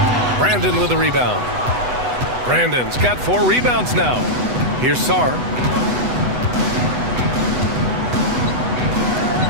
Brandon with a rebound. Brandon's got 4 rebounds now. Here's Sarr.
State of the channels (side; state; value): left; late; 8.1 ms